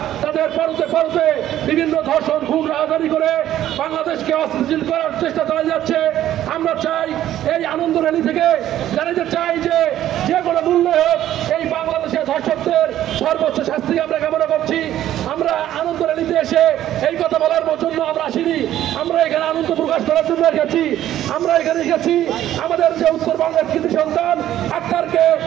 তাদের পরতে পরতে বিভিন্ন ধর্ষণ খুন রাজধানী করে বাংলাদেশকে অস্থিতিশীল করার চেষ্টা চালিয়ে যাচ্ছে। আমরা চাই এই আনন্দ র্যালি থেকে জানাতে চাই যে কোনো মূল্যে হোক এই বাংলাদেশের ধর্ষকদের সর্বোচ্চ শাস্তি আমরা কামনা করছি। আমরা আনন্দ র্যালিতে এসে এই কথা বলার জন্য আমরা আসিনি, আমরা এখানে আনন্দ প্রকাশ করার জন্য এসেছি। আমরা এখানে এসেছি আমাদের যে উত্তরবঙ্গের কৃতি সন্তান আক্তারকে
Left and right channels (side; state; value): left; quieter; 12.4 dB